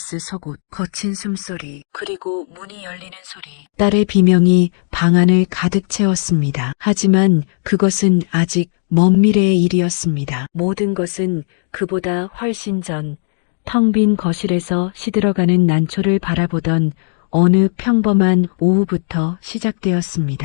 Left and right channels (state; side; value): silent; right; digital silence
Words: 속옷, 거친 숨소리, 그리고 문이 열리는 소리. 딸의 비명이 방 안을 가득 채웠습니다. 하지만 그것은 아직 먼 미래의 일이었습니다. 모든 것은 그보다 훨씬 전, 텅 빈 거실에서 시들어가는 난초를 바라보던 어느 평범한 오후부터